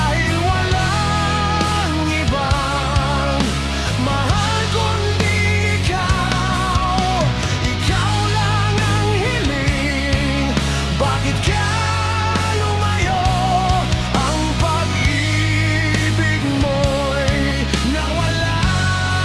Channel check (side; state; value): both; identical; correlation 1.00